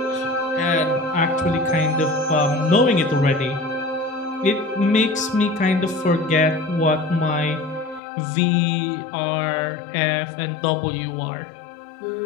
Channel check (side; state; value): right; drops out; at 8.0 s